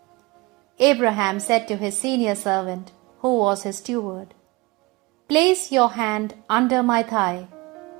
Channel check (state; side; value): quieter; left; 23.4 dB